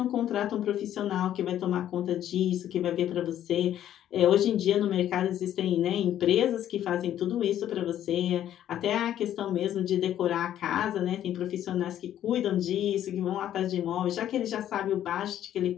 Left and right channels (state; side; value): quieter; right; 11.3 dB